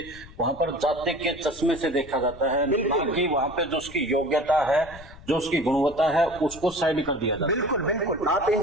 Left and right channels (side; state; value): left; noise; rumble, 18 dB below the sound